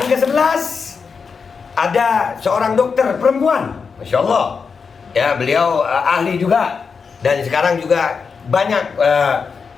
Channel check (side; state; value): right; quieter; 5.5 dB